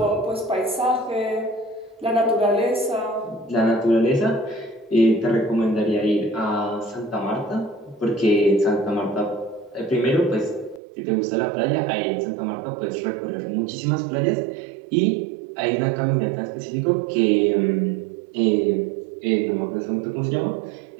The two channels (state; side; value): drops out; left; at 10.8 s